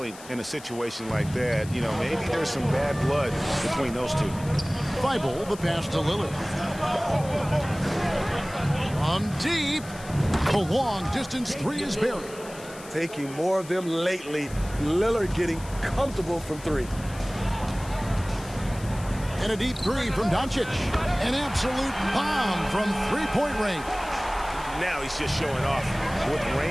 in a situation like that. You know, maybe there's some bad blood between those two. Thibault, the pass to Lillard. From deep, the long distance 3 is buried. Taking more of them lately. Lillard getting comfortable from 3. And a deep 3 from Doncic. An absolute bomb from three-point range. Now he's just showing off. With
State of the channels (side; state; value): left; noise; hiss, 18 dB below the sound